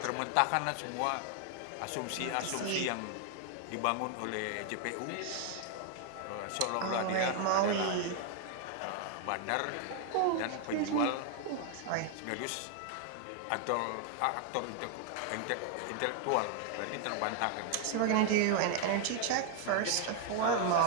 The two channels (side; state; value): both; different; correlation 0.00